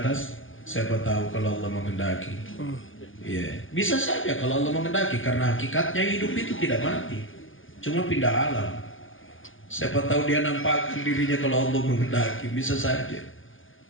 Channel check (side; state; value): right; late; 0.58 ms